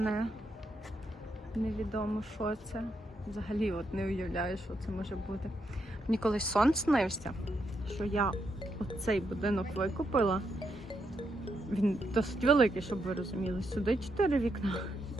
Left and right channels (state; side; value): normal; both; correlation 0.81